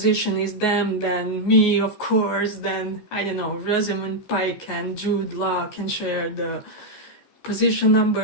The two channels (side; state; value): right; late; 14 ms